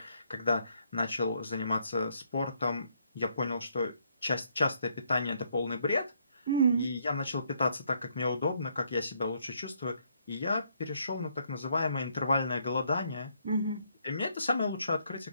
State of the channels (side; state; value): both; inverted; correlation -0.71